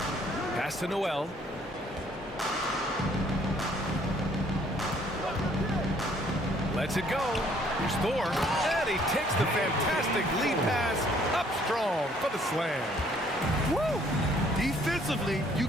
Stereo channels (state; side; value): normal; both; correlation 0.62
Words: Pass to Noel. Lets it go. Here's Thor. And he takes the fantastic lead pass up strong for the slam. Woo! Defensively, you